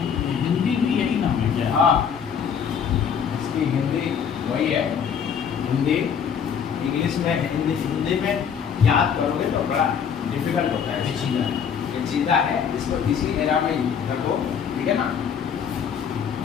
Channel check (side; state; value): right; quieter; 7.4 dB